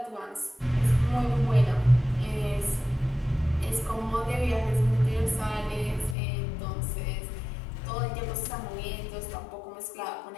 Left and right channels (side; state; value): right; drops out; at 6.2 s